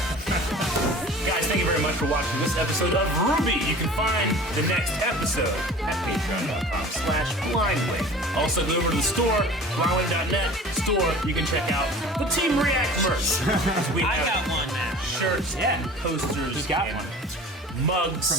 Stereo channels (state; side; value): normal; both; correlation 0.42